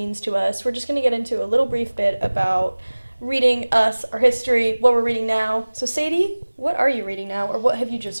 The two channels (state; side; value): inverted; both; correlation -1.00